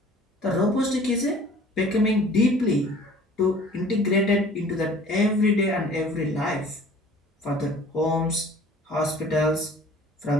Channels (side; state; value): both; normal; correlation 0.50